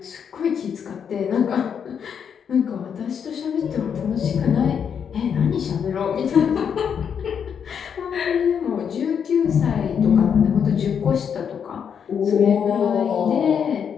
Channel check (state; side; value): quieter; right; 7.5 dB